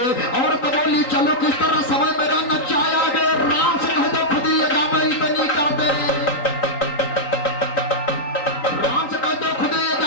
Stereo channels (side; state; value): right; late; 3.9 ms